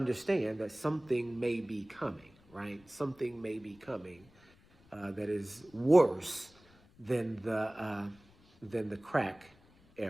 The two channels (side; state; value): left; noise; rumble, 28 dB below the sound